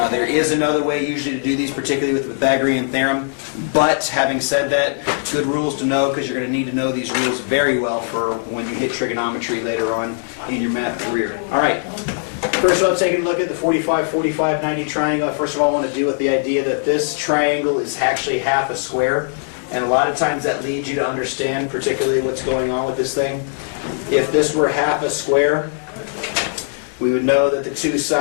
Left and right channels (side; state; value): right; silent; digital silence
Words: There is another way usually to do these, particularly with the Pythagorean Theorem. But having said that, good rules to know because you're going to need to know these rules very well for when you hit trigonometry later on in your math career. Alright, first of all, taking a look at the 45, 45, 90 triangle. First of all, I want to deal with the idea that this triangle is actually half a square. And a lot of times that leads you to understand particularly what's going on with this thing. If this were half a square, we would know that the two